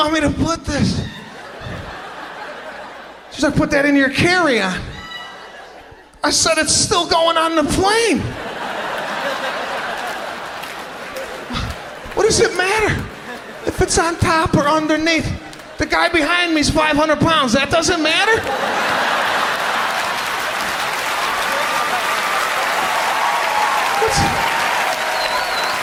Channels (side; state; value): both; identical; correlation 1.00